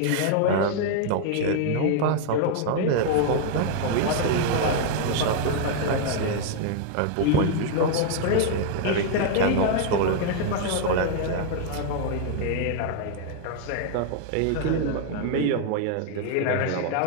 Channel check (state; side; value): different; both; correlation 0.00